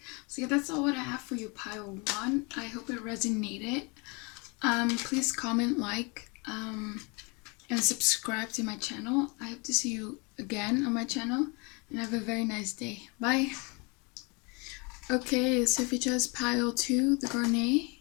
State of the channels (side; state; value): right; quieter; 30.3 dB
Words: So yeah, that's all what I have for you, pile 1. I hope it resonated. Please comment, like, and subscribe to my channel. I hope to see you again on my channel, and have a very nice day. Bye. Okay, so if you chose pile 2, the Garnet,